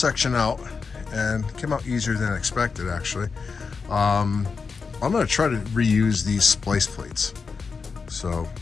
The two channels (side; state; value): right; quieter; 5.1 dB